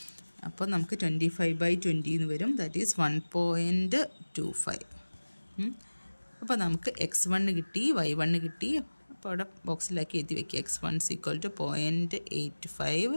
അപ്പോൾ നമുക്ക് 25/20 എന്ന് വരും. That is 1.25. അപ്പോൾ നമുക്ക് x1 കിട്ടി, y1 കിട്ടി. അപ്പോൾ അവിടെ ബോക്സിലാക്കി എഴുതി വയ്ക്കുക. x1 = 0.85,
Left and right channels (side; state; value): both; inverted; correlation -1.00